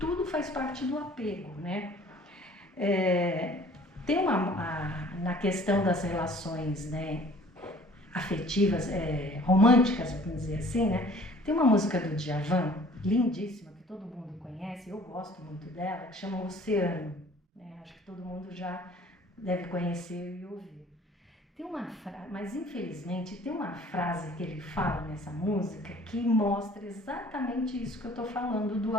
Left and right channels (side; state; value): both; normal; correlation 0.52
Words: faz parte do apego, né? Tem na questão das relações, né, afetivas, românticas, vamos dizer assim, né? Tem uma música do Djavan, lindíssima, que todo mundo conhece, eu gosto muito dela, que chama Oceano, né? Acho que todo mundo já deve conhecer e ouvir. Tem uma frase, mas infelizmente tem uma frase que ele fala nessa música que mostra exatamente isso que eu estou falando do